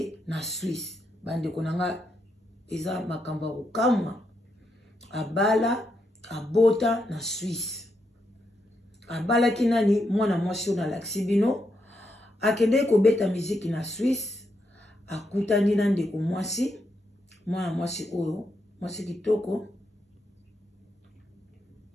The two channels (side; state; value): both; normal; correlation 0.81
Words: na Suisse. Bande konanga eza makambo kokamwa. Abala abota na Suisse. Abala kinani mwana mwasi na laksibino. Akende ko beta muziki na Suisse. Akutani na ndeko mwasi. Mwana mwasi oyo. Mwasi kitoko.